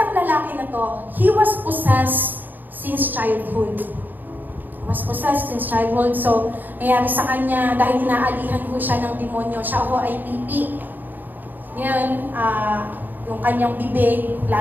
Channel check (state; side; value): late; left; 0.087 ms